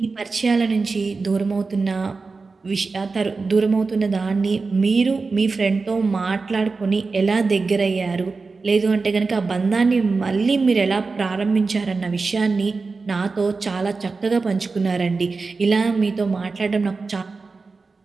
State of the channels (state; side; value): quieter; left; 4.1 dB